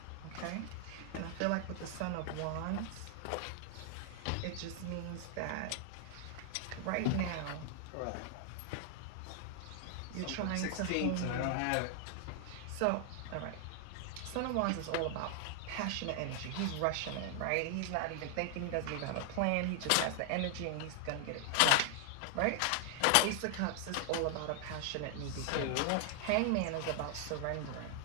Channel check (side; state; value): both; different; correlation 0.00